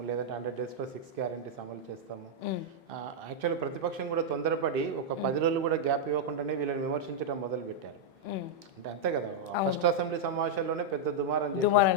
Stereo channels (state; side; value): normal; both; correlation -0.03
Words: లేదంటే 100 డేస్లో 6 గ్యారెంటీస్ అమలు చేస్తాము. యాక్చువల్లీ ప్రతిపక్షం కూడా తొందరపడి ఒక 10 రోజులు కూడా గ్యాప్ ఇవ్వకుండానే వీళ్ళని విమర్శించడం మొదలు పెట్టారు. అంటే అంతే కదా, ఫస్ట్ అసెంబ్లీ సమావేశాల్లోనే పెద్ద దుమారం